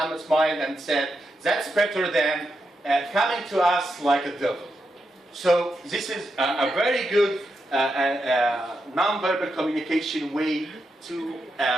smiled and said, that's better than coming to us like a devil. So this is a very good non-verbal communication way to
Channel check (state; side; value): normal; both; correlation 0.85